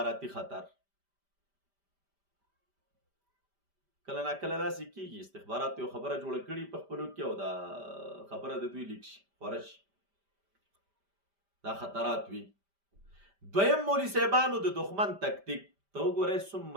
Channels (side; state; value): left; late; 5.1 ms